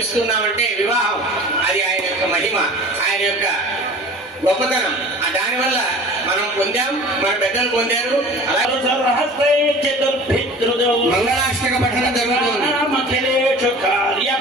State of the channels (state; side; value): normal; both; correlation 0.42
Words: వివాహం అది ఆయన యొక్క మహిమ, ఆయన యొక్క గొప్పతనం. దానివల్ల మనం పొందాం, మన పెద్దలు పొందారు. అలాగే మంగళాష్టక పఠనం జరుగుతుంది.